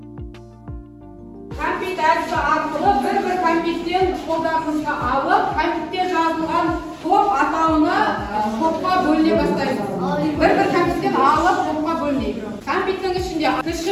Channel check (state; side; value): identical; both; correlation 1.00